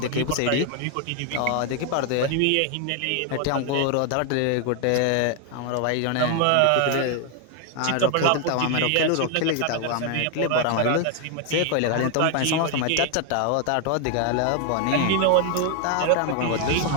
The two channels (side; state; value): both; different; correlation 0.00